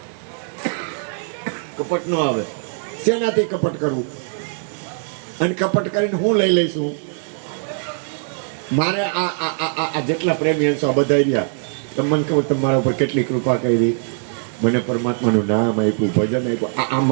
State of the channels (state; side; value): silent; left; 58 dB below the other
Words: કપટ ન આવે. શેનાથી કપટ કરવું? અને કપટ કરીને હું લઈ લઈશું. મારે આ જેટલા પ્રેમી હશો આ બધા રહ્યા, તમને ખબર તમારા ઉપર કેટલી કૃપા કરી. મને પરમાત્માનું નામ આપ્યું, ભજન આપ્યું. આ